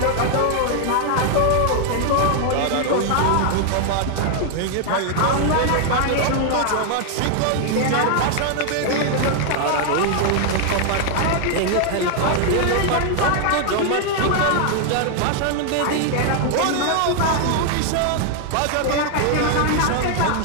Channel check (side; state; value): both; different; correlation 0.00